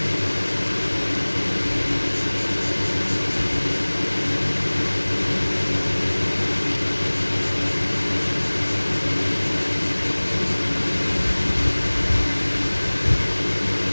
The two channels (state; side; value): inverted; both; correlation -1.00